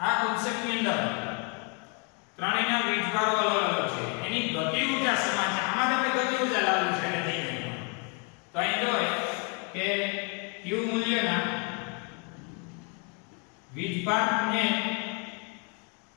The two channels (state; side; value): quieter; right; 36.0 dB